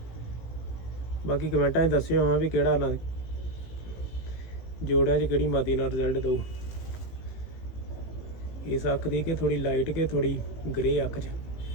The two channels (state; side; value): late; right; 18 ms